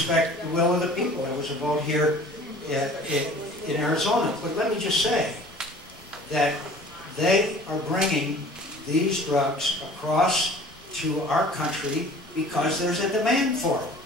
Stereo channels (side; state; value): both; normal; correlation 0.47